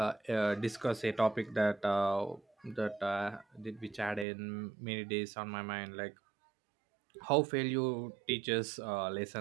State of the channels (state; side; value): drops out; left; at 4.2 s